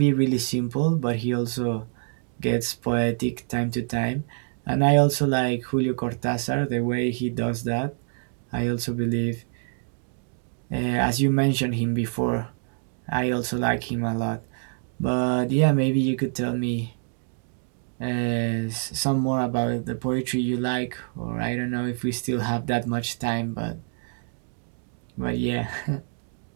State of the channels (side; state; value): left; silent; 61 dB below the other